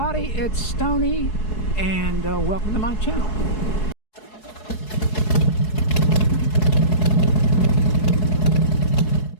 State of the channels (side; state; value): right; late; 4.7 ms